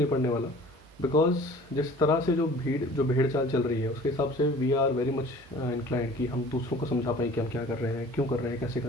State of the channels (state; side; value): normal; both; correlation 0.47